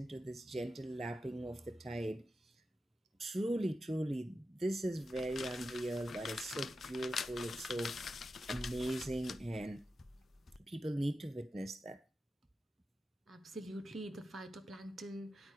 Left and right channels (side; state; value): both; normal; correlation 0.90